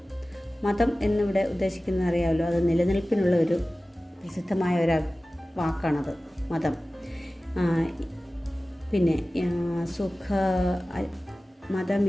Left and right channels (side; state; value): both; normal; correlation 0.96